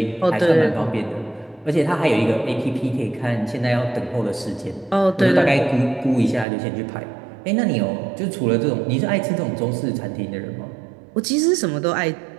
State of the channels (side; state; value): left; drops out; at 6.5 s